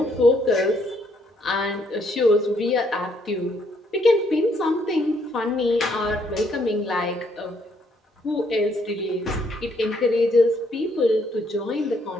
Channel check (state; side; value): normal; both; correlation 0.70